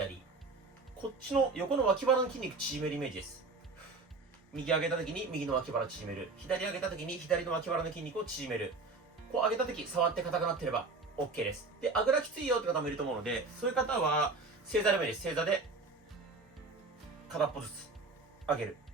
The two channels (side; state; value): left; quieter; 3.7 dB